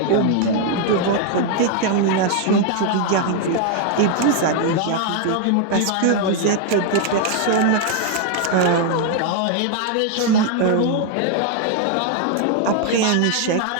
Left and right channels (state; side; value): different; both; correlation 0.00